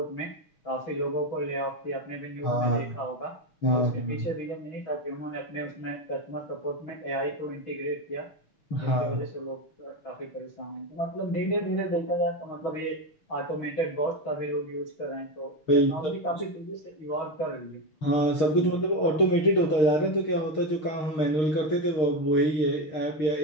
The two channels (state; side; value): late; right; 6.5 ms